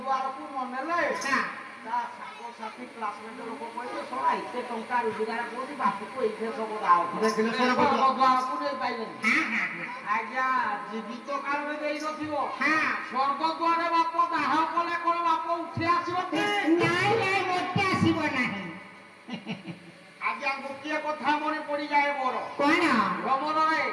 ନ ନେଲେ ତା ସାଙ୍ଗସାଥି କ୍ଲାସମେଟ ଲୋକ କହିବେ ଶଳା ଏତେ ଟଙ୍କା ରୋଜଗାର କରୁଛି ବାପକୁ ଏଇଥିରେ ସବୁ ସ୍ୱର୍ଗଦ୍ୱାରକୁ ନେଇ ପାଇଲେନି ଆଜ୍ଞା ଜୀବିତ କାଳରେ ଦେଇ ନଥିବ ସ୍ୱର୍ଗଦ୍ୱାରେ ବାପ ଦାହ କଲେ କଣ ବାପ ଉଠି ଆସିବ ଆଜ୍ଞା ଗୋଟିଏ କଥା ମନେ ପଡିଯାଏ ମୋର ଭ୍ରମଣରେ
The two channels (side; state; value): both; identical; correlation 1.00